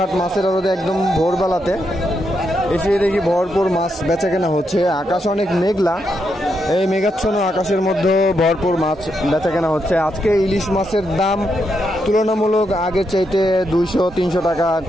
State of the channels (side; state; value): both; normal; correlation 0.82